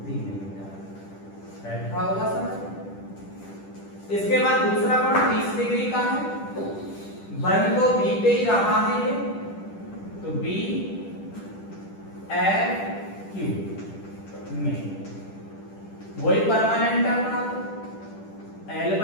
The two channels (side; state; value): right; late; 10 ms